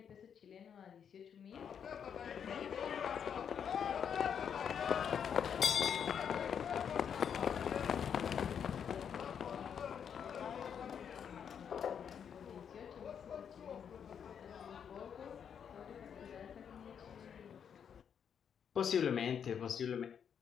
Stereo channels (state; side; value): quieter; right; 7.8 dB